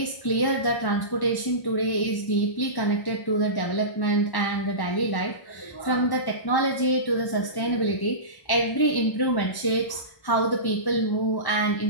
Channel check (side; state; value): right; late; 1.1 ms